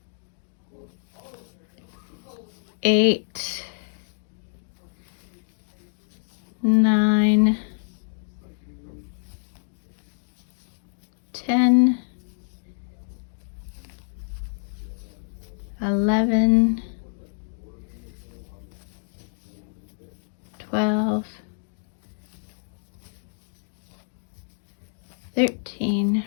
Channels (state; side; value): silent; right; digital silence